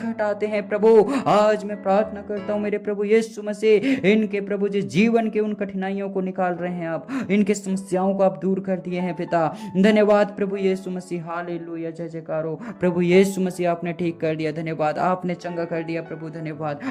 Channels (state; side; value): identical; both; correlation 1.00